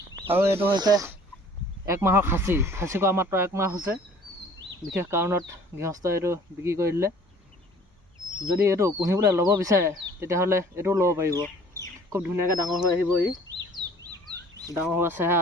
আৰু এইটো হৈছে 1 মাহৰ খাচী কৰা মাত্ৰ 1 মাহ হৈছে। বিশেষ কাৰণত গৃহস্থই এইটো বিক্ৰী কৰি দিলে। যদি এইটো পুহিবলৈ ল'ব বিচাৰে তেতিয়াহ'লে এইটোও ল'ব পাৰিব। খুব ধুনীয়াকৈ ডাঙৰ হৈ আহিব। ই ডাঙৰ হোৱা চেহেৰা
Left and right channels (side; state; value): both; normal; correlation 0.52